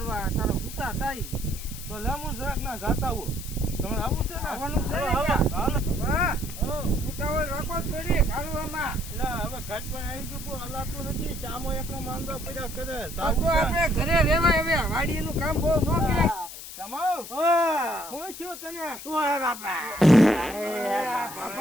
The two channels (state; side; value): noise; left; hiss, 12 dB below the sound